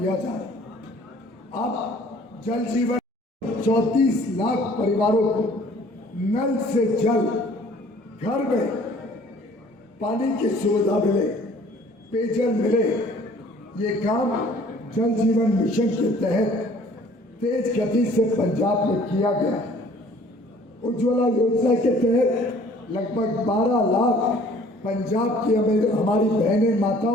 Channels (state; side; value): normal; both; correlation 0.54